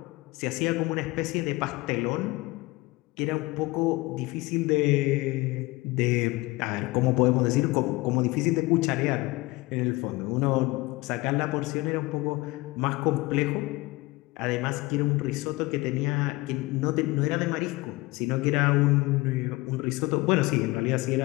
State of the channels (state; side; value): quieter; right; 21.6 dB